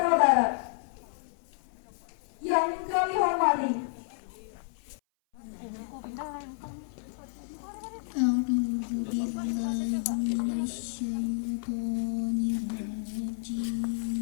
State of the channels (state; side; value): silent; right; 57 dB below the other